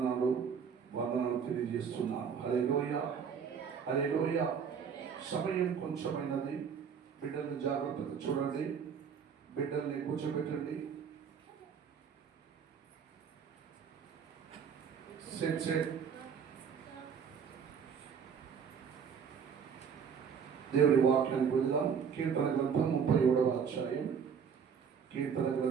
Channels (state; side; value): quieter; left; 6.9 dB